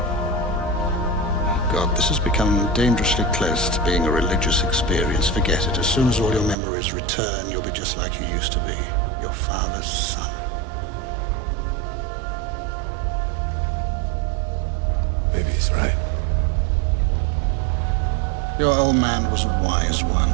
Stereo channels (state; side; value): drops out; left; at 6.6 s